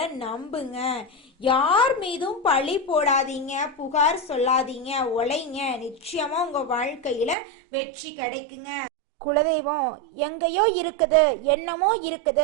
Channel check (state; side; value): drops out; left; at 7.4 s